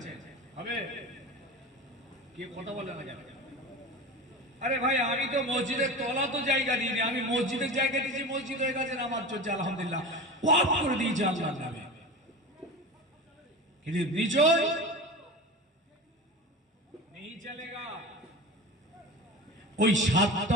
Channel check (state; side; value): normal; both; correlation 0.30